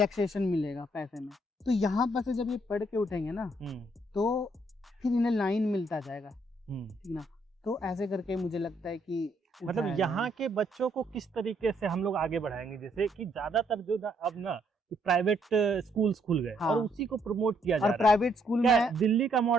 मिलेगा पैसे में। तो यहाँ पर से जब ये पढ़ के उठेंगे ना, तो फिर इन्हें लाइन मिलता जाएगा, ठीक ना। तो ऐसे करके मुझे लगता है कि मतलब यहाँ के बच्चों को किस तरीके से हम लोग आगे बढ़ाएंगे, जैसे कि ज्यादातर जो अब ना प्राइवेट स्कूल्स खुल गए, और उसी को प्रमोट किया जा रहा है। प्राइवेट स्कूल में दिल्ली का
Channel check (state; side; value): normal; both; correlation 0.71